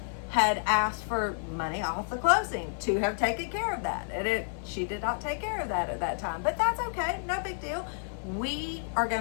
had asked for money off the closing to have taken care of that. And she did not take care of that at that time, but that's okay. No big deal. We are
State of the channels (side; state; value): right; silent; digital silence